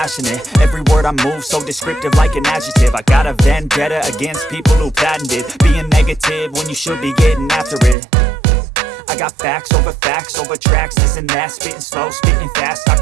Every word I move so descriptive like an adjective. I got a vendetta against people who patented being negative when you should be getting after it. I got facts over tracks, this and that. Spitting slow, spitting fast, I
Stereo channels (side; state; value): left; drops out; at 8.0 s